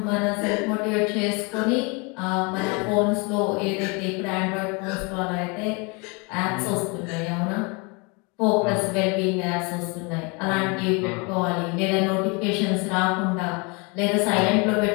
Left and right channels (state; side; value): quieter; right; 30.6 dB